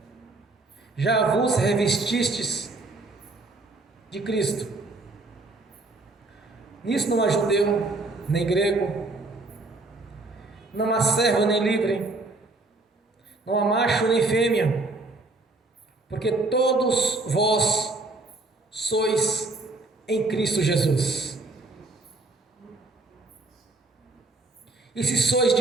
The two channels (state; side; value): quieter; left; 3.1 dB